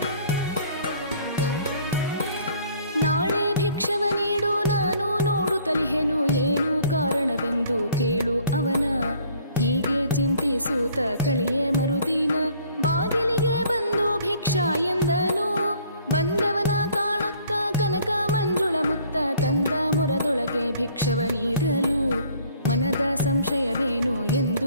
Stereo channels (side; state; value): both; inverted; correlation -0.58